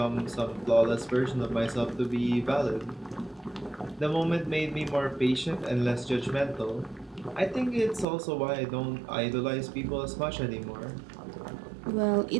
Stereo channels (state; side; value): drops out; left; at 8.1 s